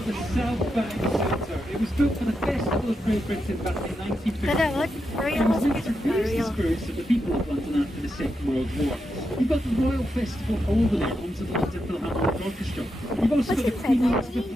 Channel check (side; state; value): both; normal; correlation 0.85